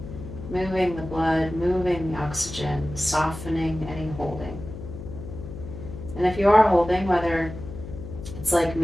moving the blood, moving the oxygen, softening any holding. And if you are holding, whether it's like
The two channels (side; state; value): left; noise; hum, 11 dB below the sound